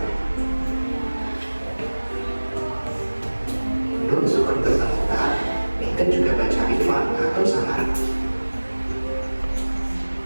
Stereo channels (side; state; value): both; inverted; correlation -1.00